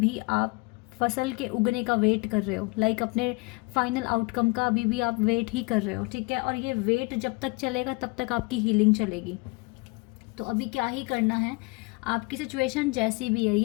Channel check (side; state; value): right; quieter; 26.2 dB